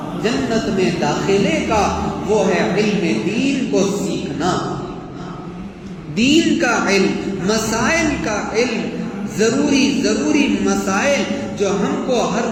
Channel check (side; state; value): both; identical; correlation 1.00